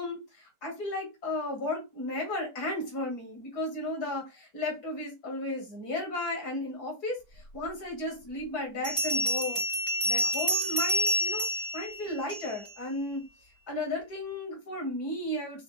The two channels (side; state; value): right; late; 4.3 ms